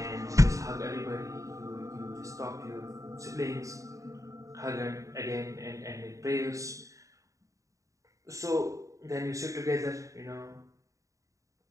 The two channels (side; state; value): left; late; 0.16 ms